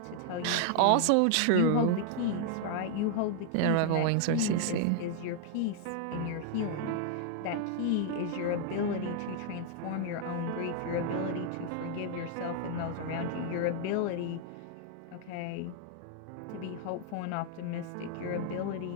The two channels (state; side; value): different; both; correlation 0.00